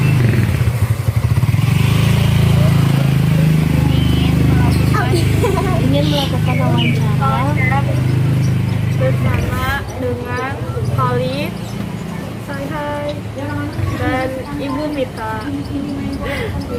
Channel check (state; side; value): identical; both; correlation 1.00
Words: ingin melakukan wawancara Bersama dengan Khalid, hai, dan Ibu Mita.